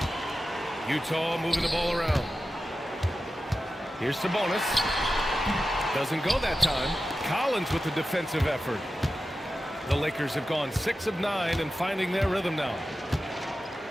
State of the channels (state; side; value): normal; both; correlation 0.93